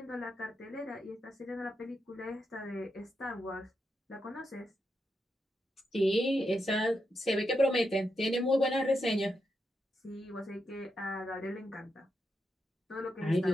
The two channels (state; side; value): normal; both; correlation 0.85